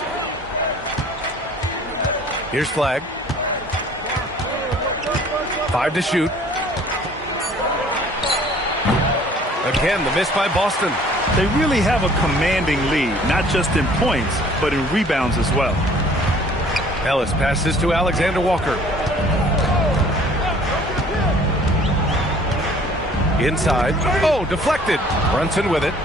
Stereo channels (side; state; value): both; normal; correlation 0.54